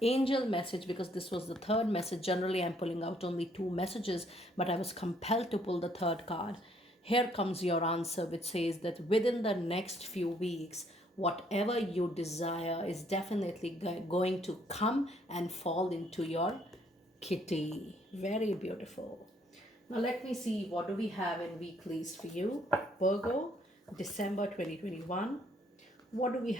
angel message, because this was the third message, generally I'm pulling out only 2 messages, but I was compelled to pull the third card. Here comes your answer, which says that within the next few weeks, whatever you desire is definitely going to come and fall into your kitty. Very beautiful. Now let me see, what do we have in weeklies for you? Virgo, December 2021. What do we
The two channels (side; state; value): both; normal; correlation 0.67